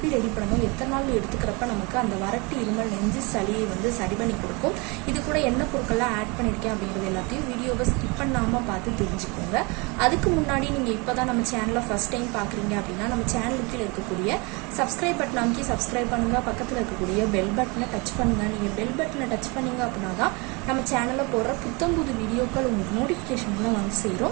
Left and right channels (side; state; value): left; quieter; 28.7 dB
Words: ரெடி பண்ணணும், எத்தனை நாள் எடுத்துக்கிறப்ப நமக்கு அந்த வறட்டு இருமல், நெஞ்சு சளியை சரி பண்ணி கொடுக்கும், இது கூட என்ன பொருட்கள்லாம் ஆட் பண்ணியிருக்கேன் அப்படிங்கிறது எல்லாத்தையும் வீடியோவை ஸ்கிப் பண்ணாமல் பார்த்து தெரிஞ்சுக்கோங்க. அதுக்கு முன்னாடி நீங்கள் இப்போ தான் நம்ம சேனலை ஃபஸ்ட் டைம் பார்க்குறீங்க அப்படின்னா நம்ம சேனலுக்கு கீழே இருக்கக்கூடிய சப்ஸ்கிரைப் பட்டன் அமைக்கி சப்ஸ்கிரைப் பண்ணுங்க. பக்கத்தில் இருக்கக்கூடிய பெல் பட்டனை டச் பண்ணுங்க. நீங்கள் பெல் பட்டனை டச் பண்ணீங்க அப்படின்னா தான் நம்ம சேனலில் போடுற புத்தம்புது வீடியோக்கள் உங்களுக்கு நோட்டிஃபிகேஷன்ல